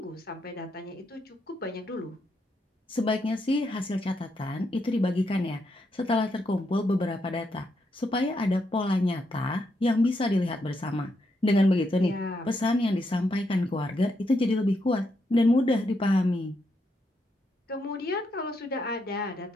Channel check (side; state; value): both; normal; correlation 0.80